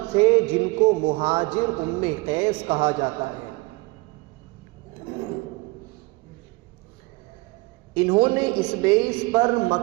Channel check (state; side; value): quieter; left; 24.2 dB